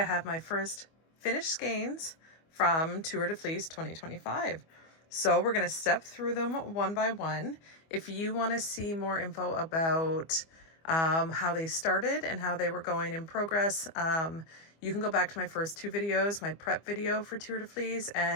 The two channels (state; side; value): late; right; 25 ms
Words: have my first finished skeins from Tour de Fleece 2025. So we're going to step through them one by one. If you want to see more info about how they started and how they were going in progress, you can go back to my first two videos, my prep video for Tour de Fleece